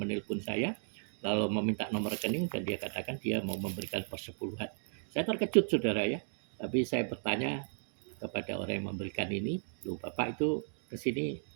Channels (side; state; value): left; silent; digital silence